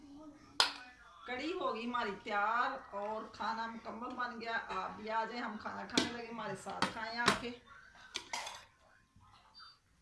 कड़ी होगी हमारी तैयार और खाना मुकम्मल बन गया। आप भी आ जाए, हम खाना खाने लगे, हमारे साथ खाएं आके।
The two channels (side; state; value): both; identical; correlation 1.00